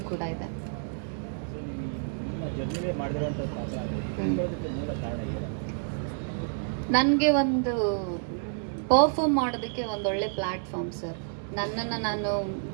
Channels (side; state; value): left; silent; 58 dB below the other